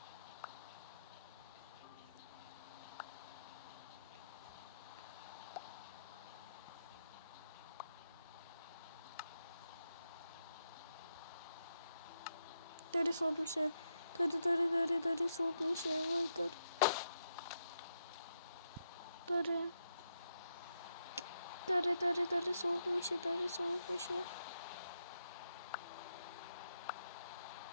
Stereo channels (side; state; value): both; inverted; correlation -0.82